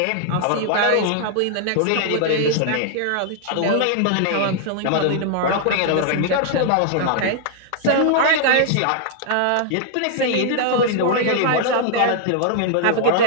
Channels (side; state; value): both; different; correlation -0.01